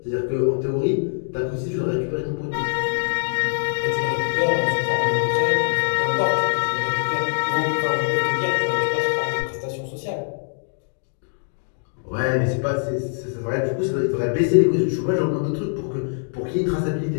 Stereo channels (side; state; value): right; silent; digital silence